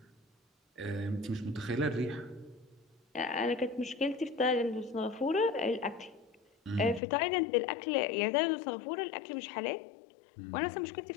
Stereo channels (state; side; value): drops out; right; at 7.0 s